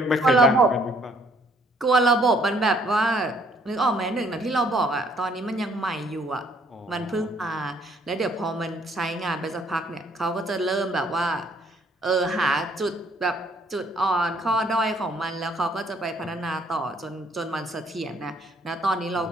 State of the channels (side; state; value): both; normal; correlation 0.64